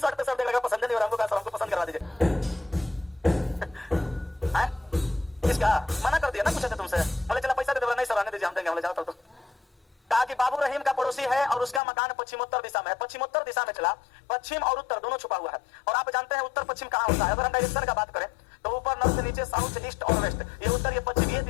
शर्ट पे शर्ट देखा पसंद नहीं हो रहा, हमको पसंद करवा दीजिए। इसका मना कर दिया ना, पूछे थे तुमसे, बोले चला पैसा दे दो, नहीं सर आने दीजिए, हम देंगे, बोले जाओ तो। कहा कि बाबू रहीम का पड़ोसी है और उसका मकान पश्चिमोत्तर दिशा में है। पश्चिमोत्तर दिशा में चला, पश्चिम और उत्तर दोनों छुपा हुआ है। और आप जानते हैं उत्तर पश्चिम कहाँ होता है? अगर हम डायरेक्शन का बात करें तो ऊपर नॉर्थ, नीचे साउथ, ईस्ट और वेस्ट, ये उत्तर ये पश्चिम, ये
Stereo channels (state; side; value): drops out; right; at 11.8 s